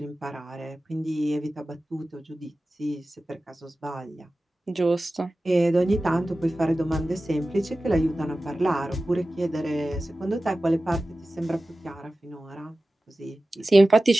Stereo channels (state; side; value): normal; both; correlation 0.96